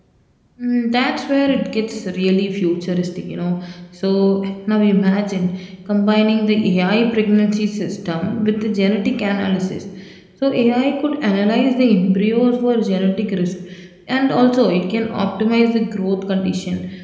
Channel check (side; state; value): both; identical; correlation 1.00